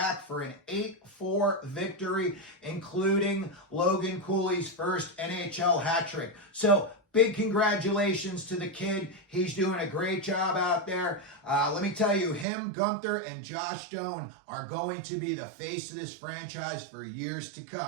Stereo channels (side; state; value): left; drops out; at 12.5 s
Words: for an 8-4 victory, including Logan Cooley's first NHL hat trick. So, big congratulations to the kid. He's doing a great job out there. Let me tell you, him, Gunther, and Josh Stone are going to be the face of this franchise for years to